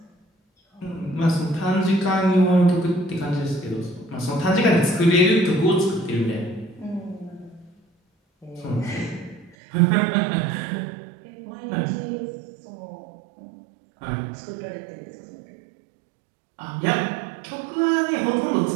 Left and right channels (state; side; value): drops out; left; at 9.6 s